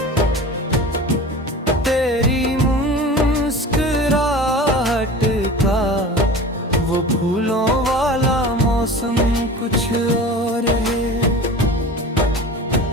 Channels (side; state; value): both; normal; correlation 0.36